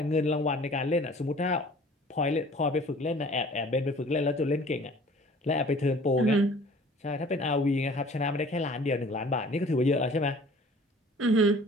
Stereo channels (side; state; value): both; normal; correlation 0.49